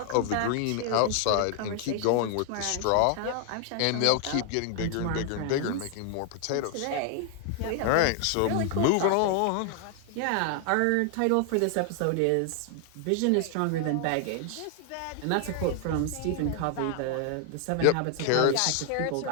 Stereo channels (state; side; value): different; both; correlation 0.00